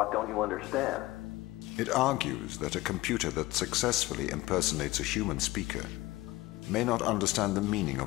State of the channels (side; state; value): right; quieter; 19.0 dB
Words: don't you understand? It argues that a computer that successfully impersonates a human speaker may not understand the meaning